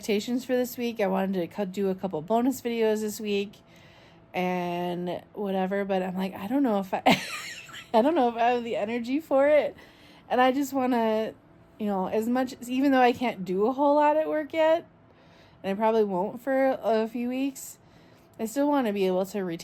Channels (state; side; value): identical; both; correlation 1.00